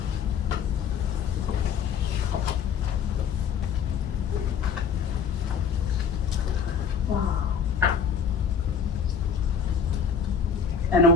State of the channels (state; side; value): quieter; right; 6.6 dB